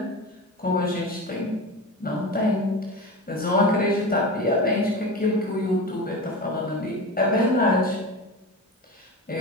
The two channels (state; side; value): normal; both; correlation 0.27